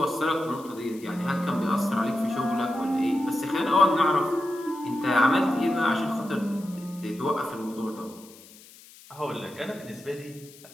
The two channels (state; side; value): noise; left; hiss, 22 dB below the sound